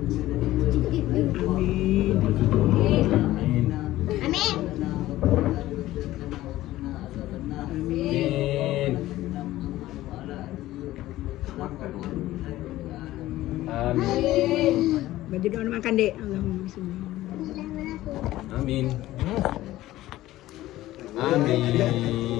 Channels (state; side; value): quieter; right; 15.7 dB